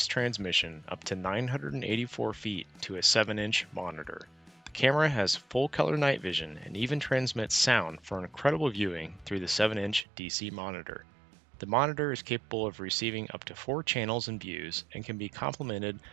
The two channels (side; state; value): left; drops out; at 10.1 s